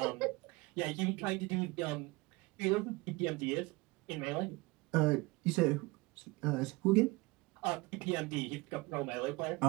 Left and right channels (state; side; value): quieter; left; 23.6 dB